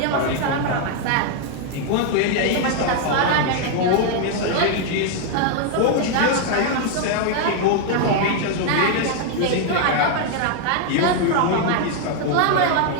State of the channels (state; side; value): different; both; correlation 0.00